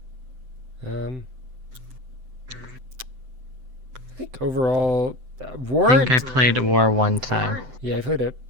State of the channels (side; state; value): left; late; 7.8 ms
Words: I think overall, War. I think I played War one time. Yeah, I played it.